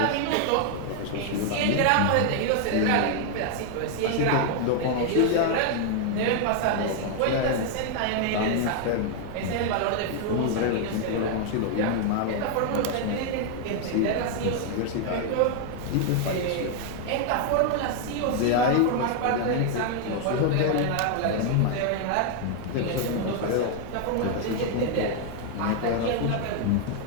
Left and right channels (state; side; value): different; both; correlation 0.00